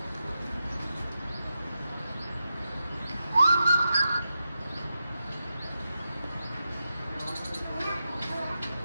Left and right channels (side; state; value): both; inverted; correlation -0.89